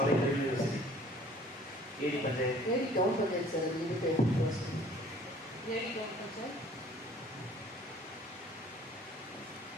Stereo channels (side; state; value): both; normal; correlation 0.53